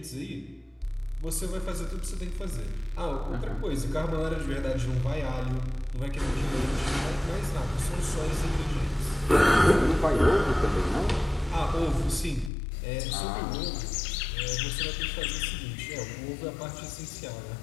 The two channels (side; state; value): right; drops out; at 12.5 s